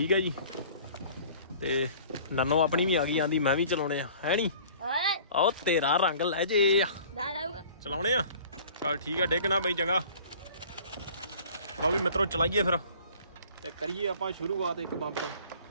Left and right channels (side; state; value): both; inverted; correlation -0.49